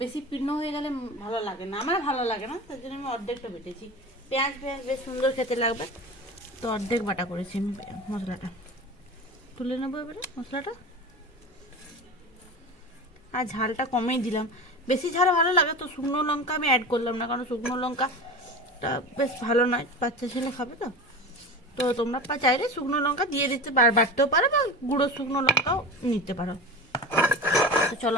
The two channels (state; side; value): normal; both; correlation 0.30